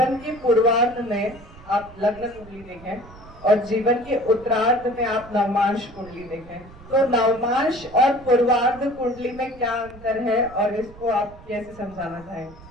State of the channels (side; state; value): right; noise; rumble, 20 dB below the sound